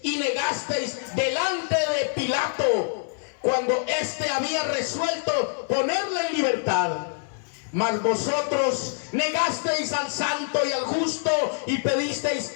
y negasteis delante de Pilato, cuando éste había resuelto ponerle en libertad. Mas vosotros negasteis al santo y al justo, y pedisteis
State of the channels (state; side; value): silent; right; digital silence